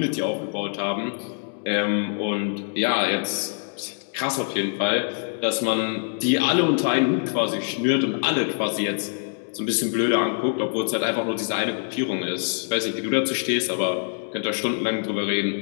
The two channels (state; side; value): silent; right; digital silence